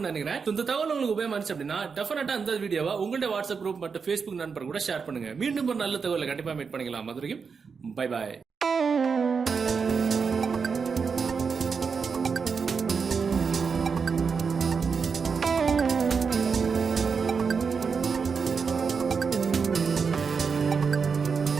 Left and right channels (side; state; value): left; quieter; 5.6 dB